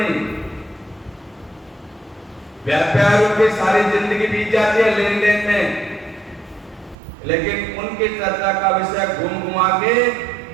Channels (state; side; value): drops out; left; at 7.0 s